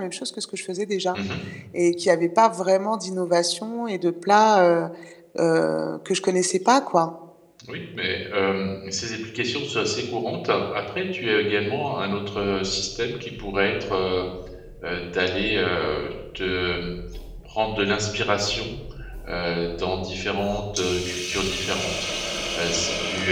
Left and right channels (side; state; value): both; identical; correlation 1.00